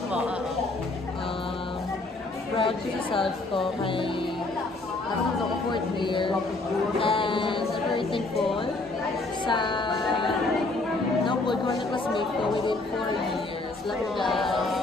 Opo, proud ko sa self ko kay ako sa 4th year. And I'm very thankful sa napod ko na classmate ko within 4 years. Love you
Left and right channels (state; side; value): quieter; right; 3.2 dB